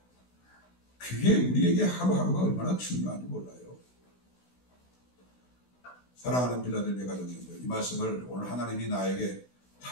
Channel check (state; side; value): late; right; 16 ms